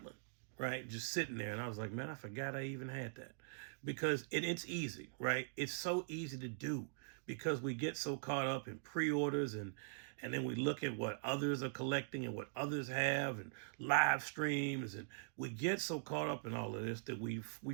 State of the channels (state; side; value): silent; left; digital silence